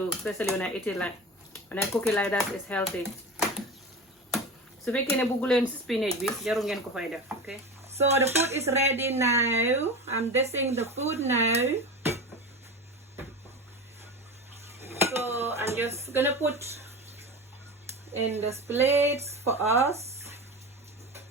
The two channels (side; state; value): both; normal; correlation 0.27